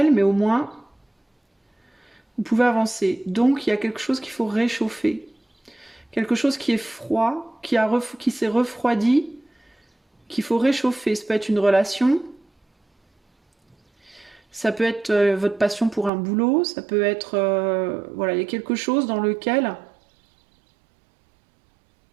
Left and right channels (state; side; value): drops out; left; at 16.1 s